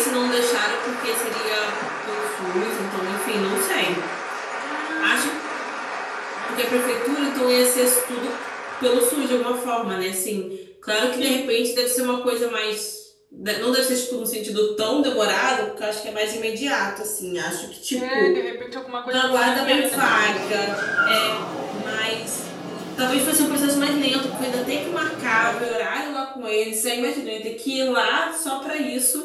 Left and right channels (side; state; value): both; identical; correlation 1.00